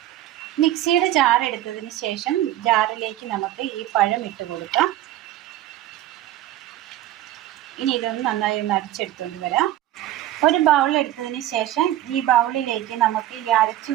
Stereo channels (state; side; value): quieter; left; 13.7 dB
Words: മിക്സിയുടെ ജാർ എടുത്തതിന് ശേഷം ജാറിലേക്ക് നമുക്ക് ഈ പഴം ഇട്ട് കൊടുക്കാം. ഇനി ഇതൊന്ന് നന്നായി അടിച്ചെടുത്തുകൊണ്ട് വരാം. ഒരു ബൗൾ എടുത്തതിന് ശേഷം ഈ ബൗളിലേക്ക് നമുക്ക് ഈ അരച്ചു